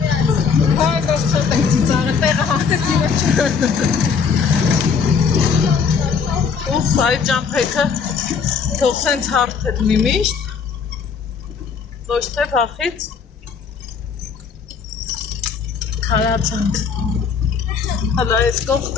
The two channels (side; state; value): right; quieter; 6.1 dB